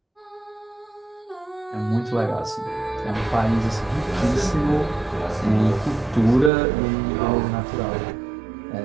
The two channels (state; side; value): drops out; left; at 6.5 s